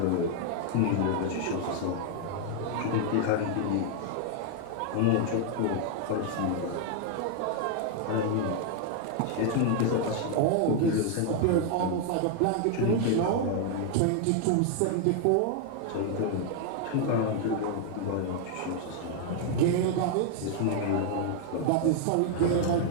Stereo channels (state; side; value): different; both; correlation 0.00